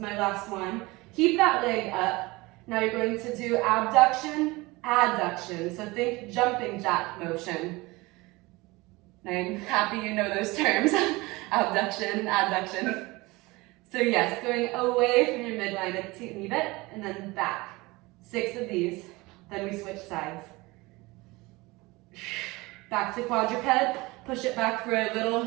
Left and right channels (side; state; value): left; quieter; 22.5 dB